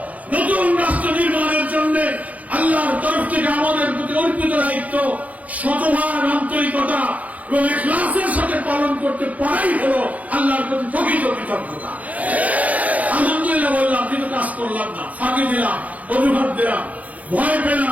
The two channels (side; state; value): left; late; 0.072 ms